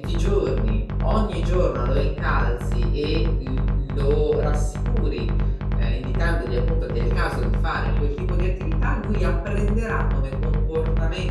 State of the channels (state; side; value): identical; both; correlation 1.00